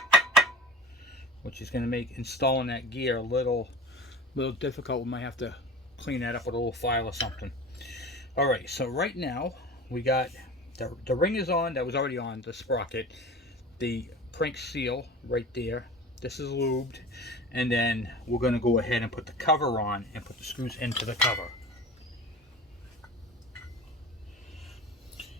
which is going to make installing that gear a little difficult. We might have to clean that up with a little file or something. All right, so right now we got the ring is on. That was already on the sprocket. The crank seal right there. This is lubed, and then we're going to go ahead and put the cover on and put the screws into the cover.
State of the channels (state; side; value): normal; both; correlation 0.37